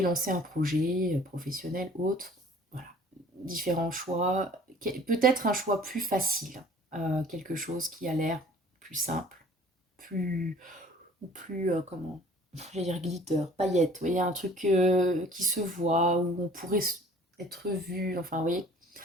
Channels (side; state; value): both; normal; correlation 0.51